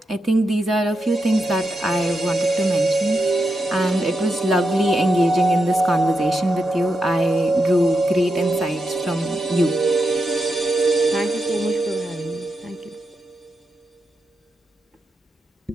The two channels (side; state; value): both; normal; correlation 0.86